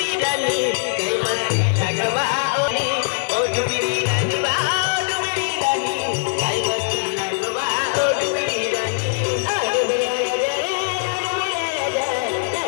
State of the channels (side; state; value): right; silent; 65 dB below the other